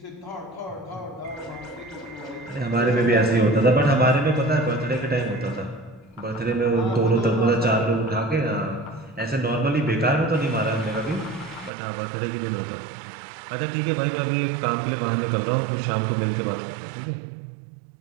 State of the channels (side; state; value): left; drops out; at 11.7 s